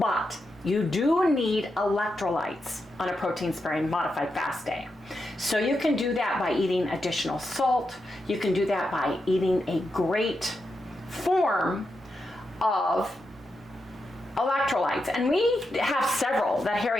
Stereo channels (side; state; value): both; normal; correlation 0.86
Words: you do need electrolytes on a protein sparing modified fast day. So you can do that by eating additional salt. You can do that by eating a great form of electrolytes. And we have several that